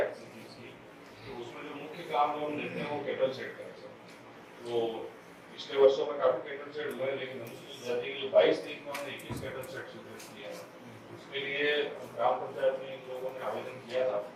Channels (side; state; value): both; identical; correlation 1.00